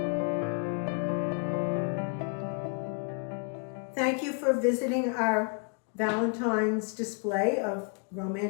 Thank you for visiting our Valentine's display of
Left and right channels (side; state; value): right; quieter; 37.2 dB